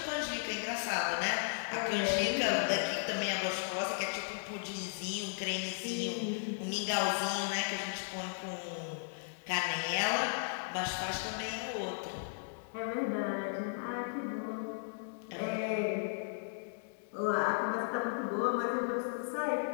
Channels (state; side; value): silent; right; digital silence